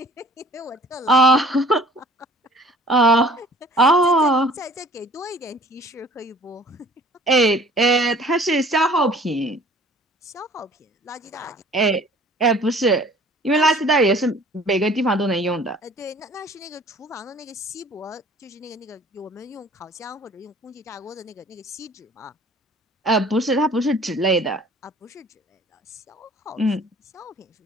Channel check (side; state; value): both; normal; correlation 0.51